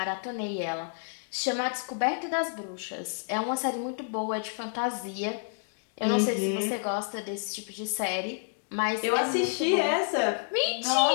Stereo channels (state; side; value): silent; right; digital silence